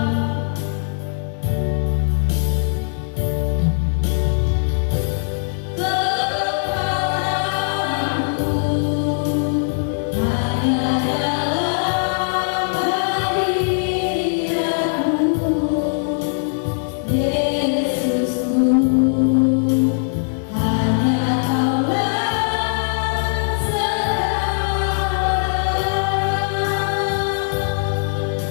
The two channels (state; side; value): silent; right; digital silence